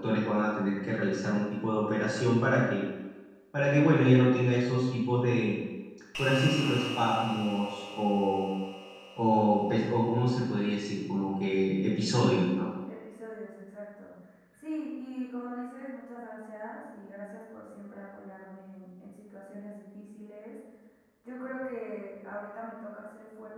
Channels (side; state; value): both; identical; correlation 1.00